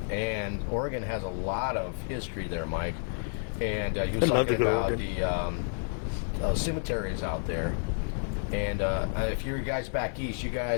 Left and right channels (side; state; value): right; silent; 58 dB below the other